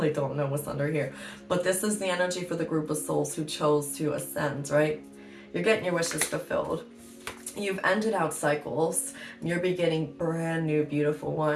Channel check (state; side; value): identical; both; correlation 1.00